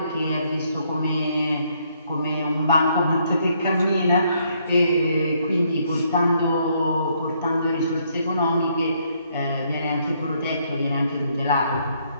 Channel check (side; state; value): both; inverted; correlation -0.71